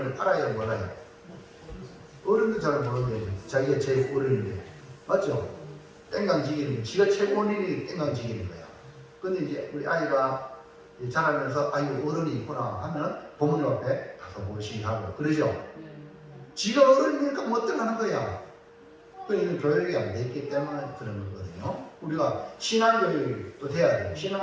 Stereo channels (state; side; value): identical; both; correlation 1.00